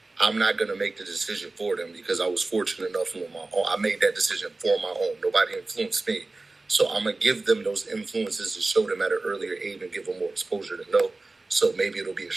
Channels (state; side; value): quieter; left; 3.3 dB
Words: I'm not gonna make the decision for them because I was fortunate enough on my own. I made that decision for my own. Nobody influenced me, so I'm gonna give them those influences to show them at an earlier age and give them more exposure to know. So maybe it'll be a